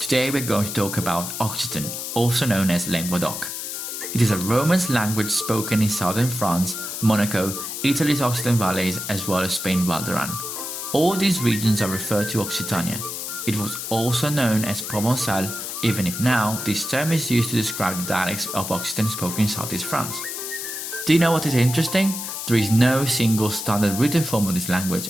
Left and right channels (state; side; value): noise; left; hiss, 6 dB below the sound